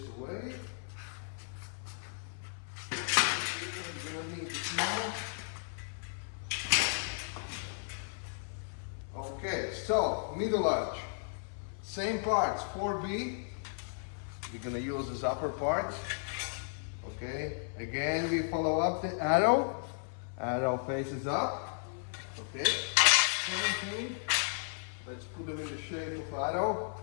away. We're gonna need this now. Okay, so middle arch. Same parts, 4B. We're gonna use this upper part. Okay, again we follow up the arrow. Arrow faces up. Okay, 17. Let's put them in the shape of arrow.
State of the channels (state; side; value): silent; right; 55 dB below the other